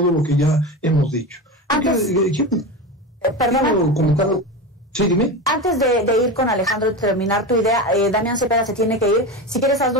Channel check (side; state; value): both; normal; correlation 0.23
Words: lo que ya hemos dicho. Perdón. Sí, dime. Antes de ir con Alejandro y terminar tu idea, Damián Cepeda se tiene que ir. Si quieres,